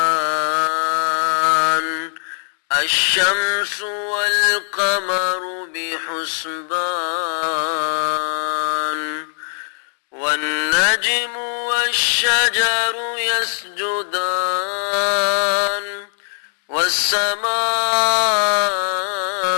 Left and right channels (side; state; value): right; silent; 66 dB below the other